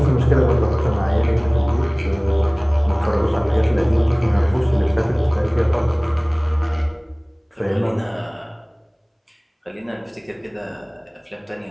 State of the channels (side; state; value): both; identical; correlation 1.00